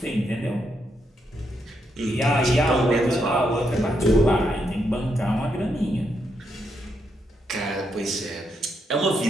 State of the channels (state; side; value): normal; both; correlation 0.80